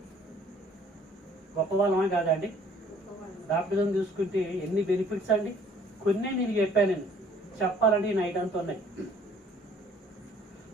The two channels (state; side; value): normal; both; correlation 0.57